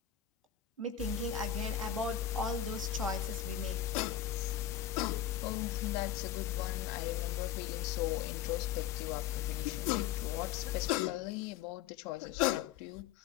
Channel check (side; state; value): right; quieter; 10.1 dB